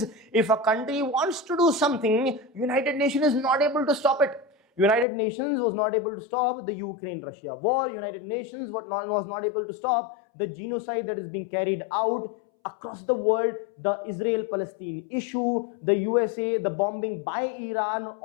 if a country wants to do something, United Nations is not able to stop it. United Nations was not able to stop the Ukraine-Russia war. United Nations was not able to stop the genocide that is being carried out across the world, the Israel-Palestine issue, the USA, the bombing by Iran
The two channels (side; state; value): right; drops out; at 5.1 s